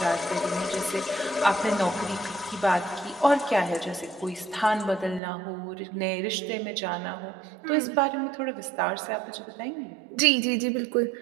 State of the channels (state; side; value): drops out; left; at 5.2 s